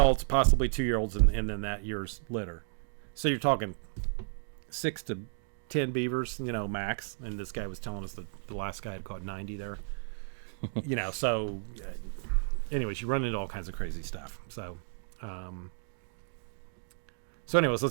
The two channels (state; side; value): silent; left; digital silence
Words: possibly 2-year-olds, and then that year's litter. So you're talking 6 to 10 beavers, max. And this guy was telling us that the last guy had caught 90 there. So anyways, you run into all kinds of crazy stuff. So anyways,